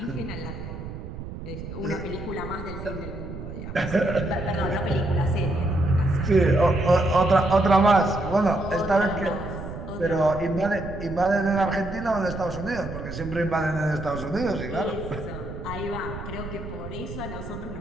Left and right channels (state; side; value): noise; right; rumble, 10 dB below the sound